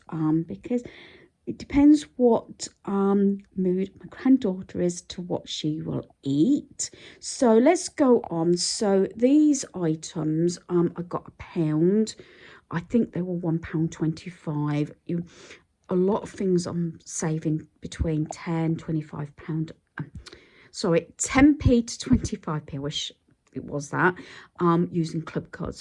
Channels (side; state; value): both; identical; correlation 1.00